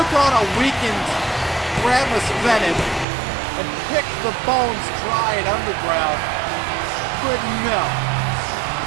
on a weakened Ramus Venom and picked the bones dry and underground. But no.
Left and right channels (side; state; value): left; drops out; at 3.1 s